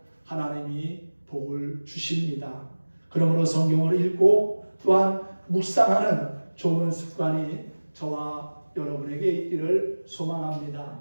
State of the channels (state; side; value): inverted; both; correlation -1.00